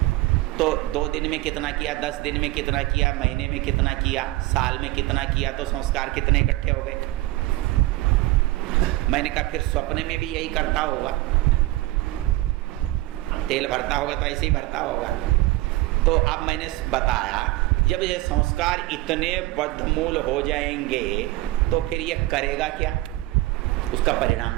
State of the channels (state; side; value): quieter; left; 18.6 dB